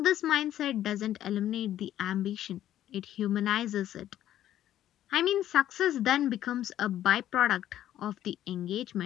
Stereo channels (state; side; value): quieter; right; 12.1 dB